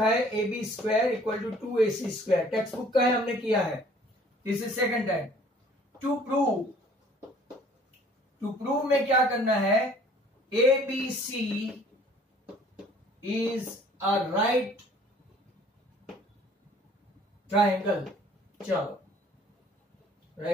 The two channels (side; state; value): both; normal; correlation 0.55